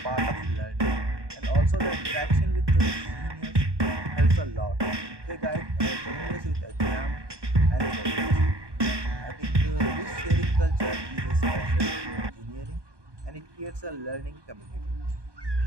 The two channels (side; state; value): left; late; 1.2 ms